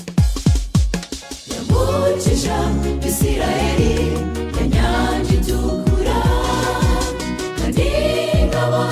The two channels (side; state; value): both; identical; correlation 1.00